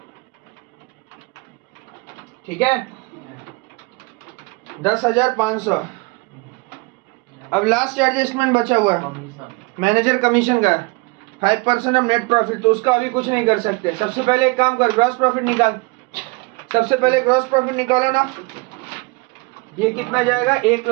ठीक है 10,500। अब लास्ट एडजस्टमेंट बचा हुआ कमीशन मैनेजर कमीशन का 5% ऑफ नेट प्रॉफिट, तो उसका अभी कुछ नहीं कर सकते। सबसे पहले एक काम कर, ग्रॉस प्रॉफिट निकाल, सबसे पहले ग्रॉस प्रॉफिट निकालो ना, ये कितना जाएगा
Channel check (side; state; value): left; quieter; 27.0 dB